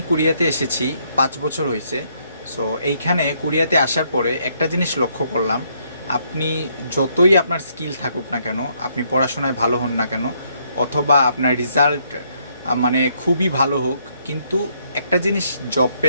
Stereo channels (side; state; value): both; inverted; correlation -0.71